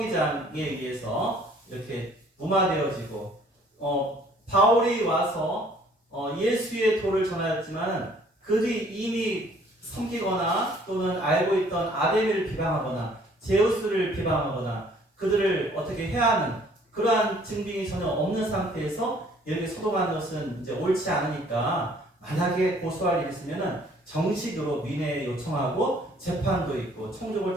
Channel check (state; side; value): normal; both; correlation 0.58